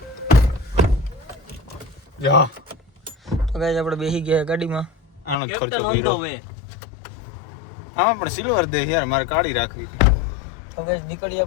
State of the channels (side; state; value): right; drops out; at 5.4 s